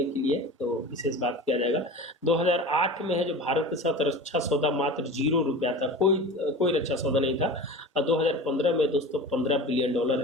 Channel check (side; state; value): both; normal; correlation 0.34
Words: के लिए तो विशेष बात किया जाएगा। 2008 में है जो भारत के साथ रक्षा सौदा मात्र $0 था, कोई रक्षा सौदा नहीं था। और 2015 में दोस्तों $15 बिलियन